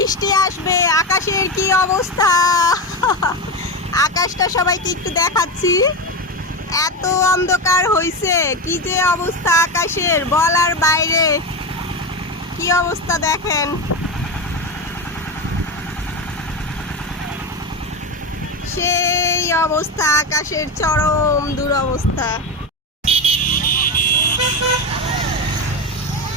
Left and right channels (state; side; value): normal; both; correlation 0.17